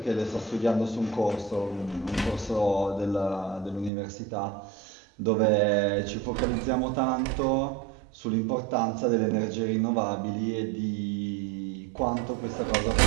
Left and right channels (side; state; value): left; drops out; at 3.9 s